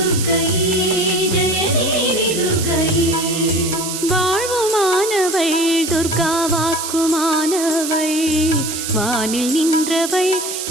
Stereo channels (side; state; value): right; noise; hiss, 5 dB below the sound